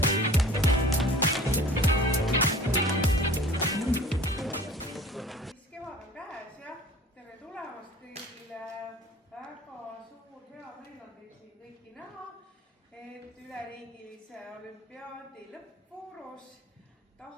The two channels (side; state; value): both; normal; correlation 0.43